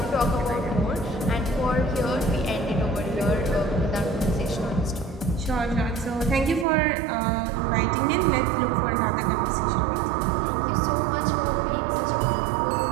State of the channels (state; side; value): drops out; left; at 6.7 s